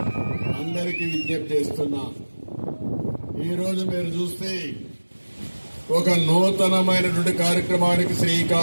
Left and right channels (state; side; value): inverted; both; correlation -1.00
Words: అందరికీ విజ్ఞప్తి చేస్తున్నా. ఈరోజు మీరు చూస్తే ఒక నూతనమైనటువంటి కార్యక్రమానికి